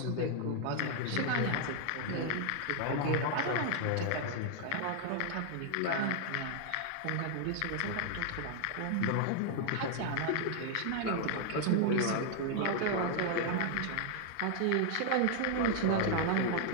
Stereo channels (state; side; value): different; both; correlation 0.00